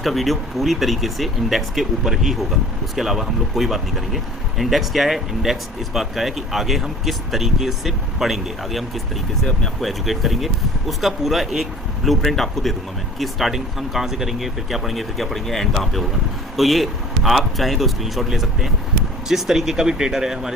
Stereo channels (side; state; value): both; normal; correlation 0.46